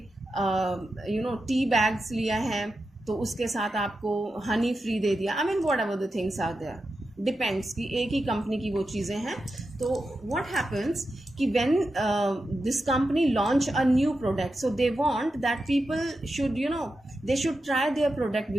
टी बैग्स लिया है तो उसके साथ आपको हनी फ्री दे दिया. I mean whatever the things are there, depends कि एक ही कंपनी की वो चीज़ें हैं. तो व्हाट हैपन्स कि when this company launch a new product, so they want that people should they should try their product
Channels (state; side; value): normal; both; correlation 0.89